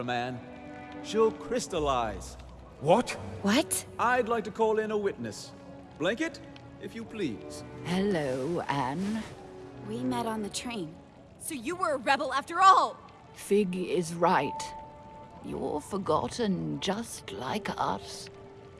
Anne, she'll crystallize. What? What? I'd like to call in a witness. Blanket, if you please. Hello, Anne. We met on the train. So you were a rebel after all! Fig is right. You're forgotten just like us.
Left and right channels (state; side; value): identical; both; correlation 1.00